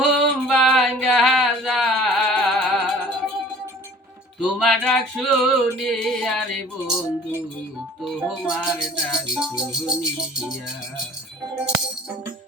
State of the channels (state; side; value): normal; both; correlation 0.48